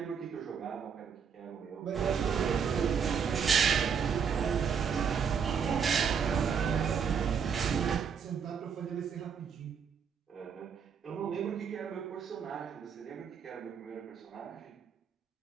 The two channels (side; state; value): left; quieter; 6.8 dB